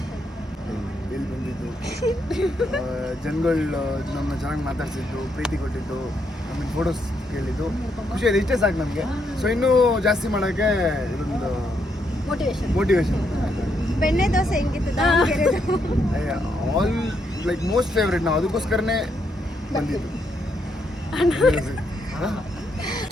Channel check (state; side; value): normal; both; correlation 0.77